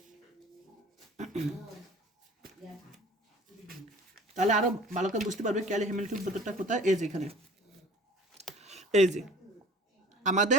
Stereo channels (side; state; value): both; normal; correlation 0.46